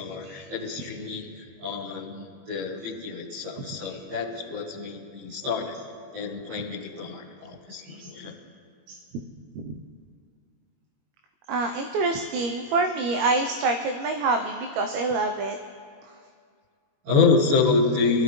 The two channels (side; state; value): left; late; 21 ms